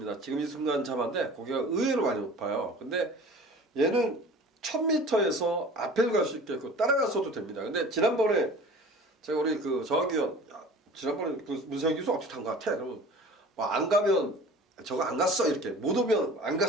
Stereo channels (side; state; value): both; normal; correlation 0.43